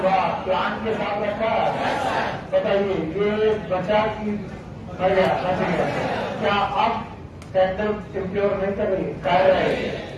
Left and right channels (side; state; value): both; identical; correlation 1.00